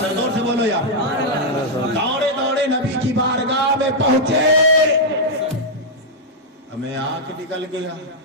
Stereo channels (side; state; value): both; normal; correlation -0.04